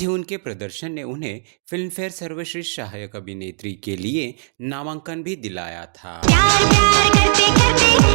ही उनके प्रदर्शन ने उन्हें फिल्म फेयर सर्वश्रेष्ठ सहायक अभिनेत्री के लिए नामांकन भी दिलाया था। प्यार प्यार करते करते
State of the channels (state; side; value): silent; left; digital silence